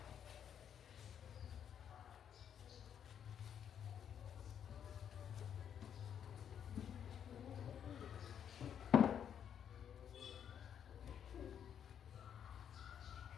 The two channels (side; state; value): right; quieter; 8.7 dB